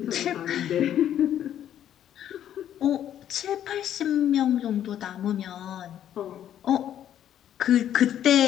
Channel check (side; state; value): right; quieter; 10.7 dB